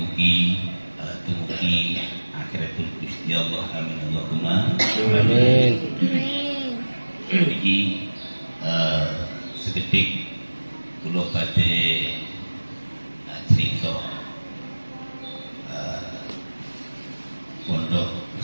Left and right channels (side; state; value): both; inverted; correlation -1.00